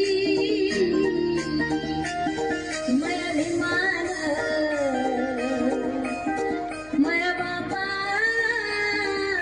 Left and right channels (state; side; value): noise; left; hum, 23 dB below the sound